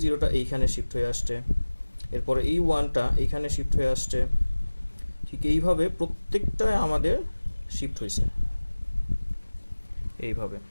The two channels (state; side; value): inverted; both; correlation -1.00